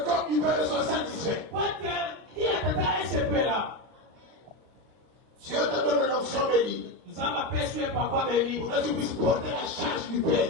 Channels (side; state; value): left; late; 33 ms